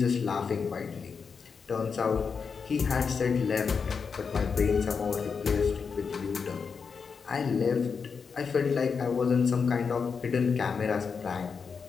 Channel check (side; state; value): right; quieter; 5.7 dB